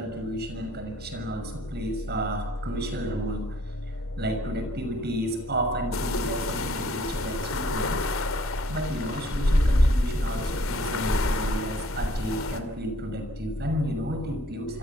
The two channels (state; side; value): normal; both; correlation 0.60